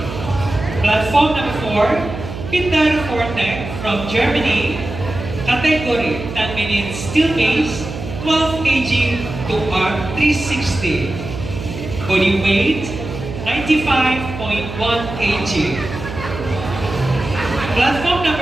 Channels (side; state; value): right; noise; hum, 9 dB below the sound